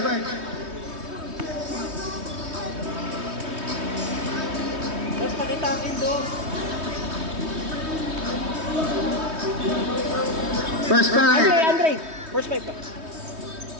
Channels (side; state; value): left; late; 3.2 ms